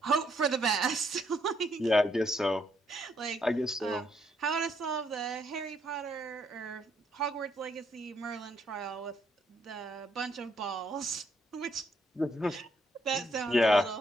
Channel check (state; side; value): normal; both; correlation 0.72